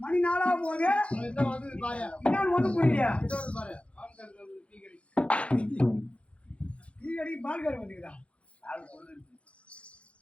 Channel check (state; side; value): late; right; 0.061 ms